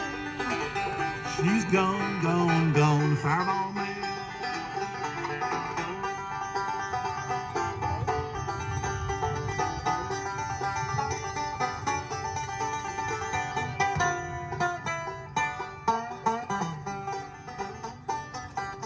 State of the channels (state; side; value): identical; both; correlation 1.00